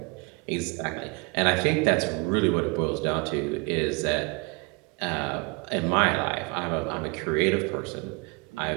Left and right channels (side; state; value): left; quieter; 30.0 dB